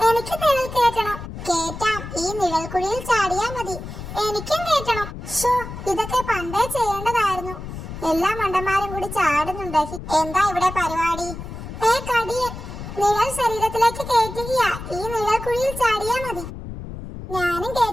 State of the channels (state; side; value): noise; left; rumble, 10 dB below the sound